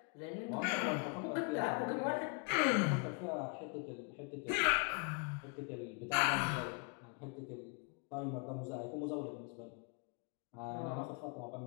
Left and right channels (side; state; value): right; quieter; 34.1 dB